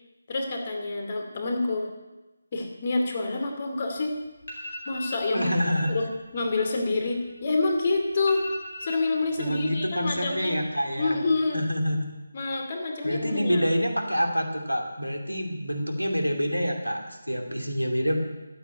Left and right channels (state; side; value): inverted; both; correlation -0.92